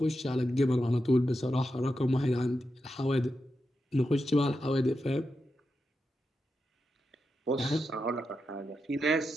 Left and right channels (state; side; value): normal; both; correlation 0.88